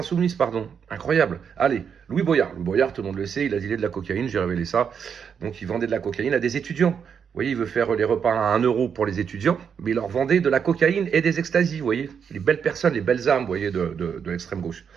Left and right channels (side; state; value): left; quieter; 7.1 dB